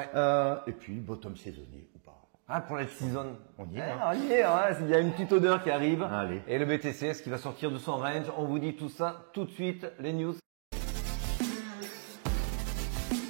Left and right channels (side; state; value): left; silent; digital silence